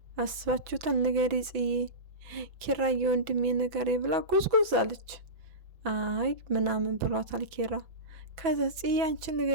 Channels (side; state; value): left; late; 6.0 ms